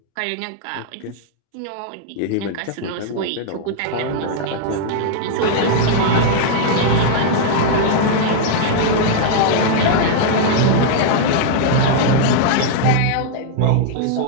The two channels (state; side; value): different; both; correlation 0.00